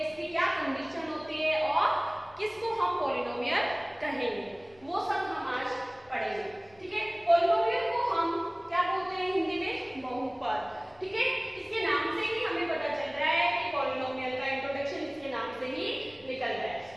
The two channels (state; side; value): noise; left; rumble, 30 dB below the sound